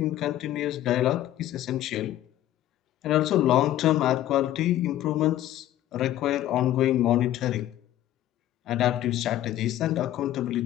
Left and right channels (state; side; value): quieter; right; 13.2 dB